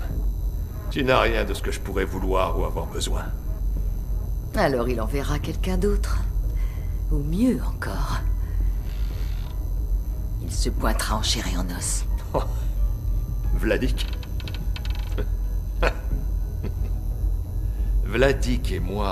Tu n'as rien de ce que je pourrais vouloir ou avoir besoin. Alors il enverra quelqu'un d'autre. Ou mieux encore. Il se pointera en chair et en os. Oh. Vladik. Vladik et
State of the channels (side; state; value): both; identical; correlation 1.00